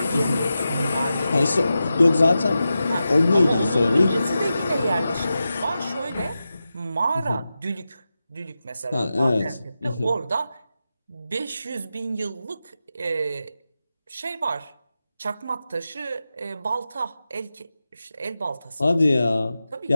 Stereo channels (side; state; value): both; inverted; correlation -0.91